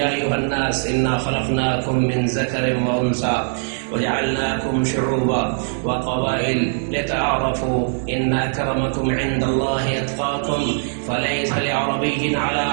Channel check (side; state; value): left; silent; digital silence